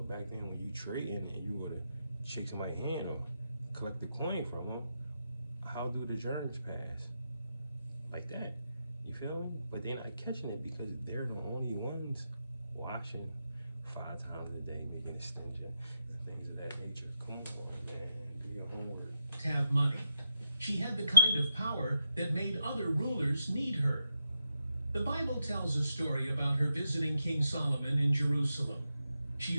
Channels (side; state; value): both; inverted; correlation -0.86